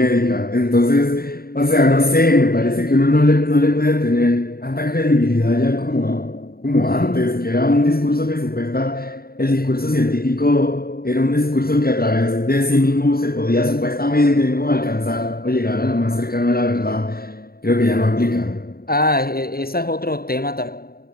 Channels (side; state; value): right; late; 0.44 ms